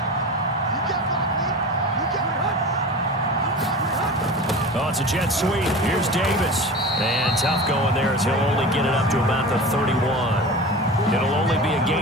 Oh, it's a jet sweep. Here's Davis. And tough going there as he'll only get it up to about the 31. It'll only be a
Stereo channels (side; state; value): both; normal; correlation 0.32